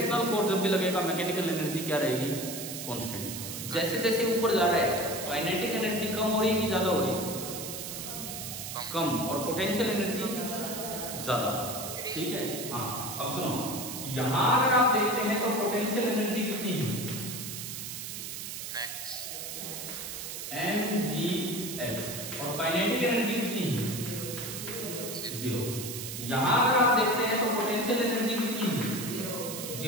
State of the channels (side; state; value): right; noise; hiss, 7 dB below the sound